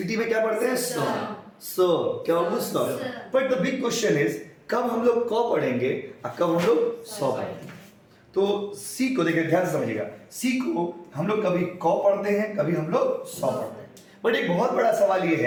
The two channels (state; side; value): identical; both; correlation 1.00